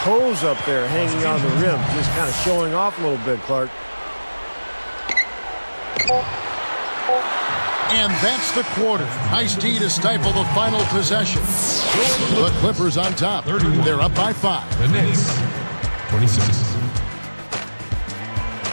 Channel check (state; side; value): inverted; both; correlation -1.00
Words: up there hanging on the rim. Just kind of showing off a little bit, Clark. And that's the quarter. Nice D to stifle the final possession. The Clippers on top. They're up by 5. The Knicks, 26.